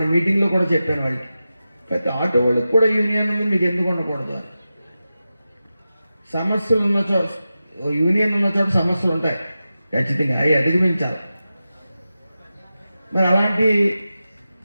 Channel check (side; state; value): both; inverted; correlation -0.93